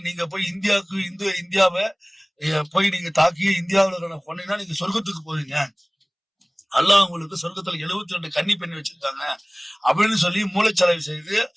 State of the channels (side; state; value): both; identical; correlation 1.00